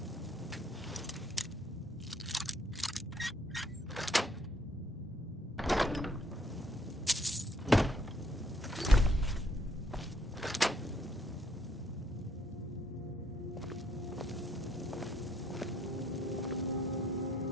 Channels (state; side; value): normal; both; correlation 0.69